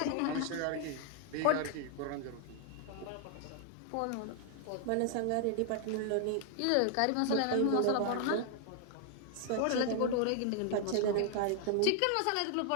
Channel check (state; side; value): different; both; correlation 0.00